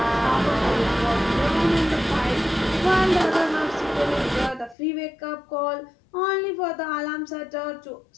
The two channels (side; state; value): right; drops out; at 4.8 s